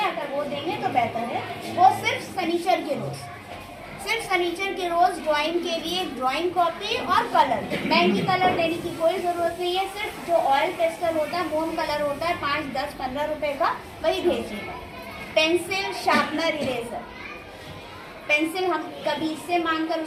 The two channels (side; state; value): both; identical; correlation 1.00